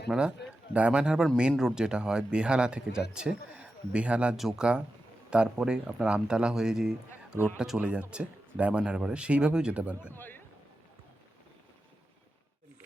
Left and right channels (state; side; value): normal; both; correlation 0.91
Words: আপনারা ডায়মন্ড হারবার মেন রোড যেটা হয় বেহালা থেকে যাচ্ছে, বেহালা জোকা, তারপরে আপনার আমতলা হয়ে যে রোডটা চলে যাচ্ছে ডায়মন্ড হারবারে, সেইভাবেও যেতে পারবেন।